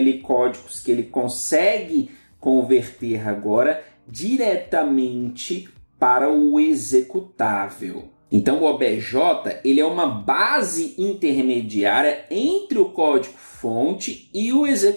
códigos que ele consegue converter agora diretamente para o executável. Então o obj ele é uma base intermediária entre o código-fonte e o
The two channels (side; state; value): both; inverted; correlation -1.00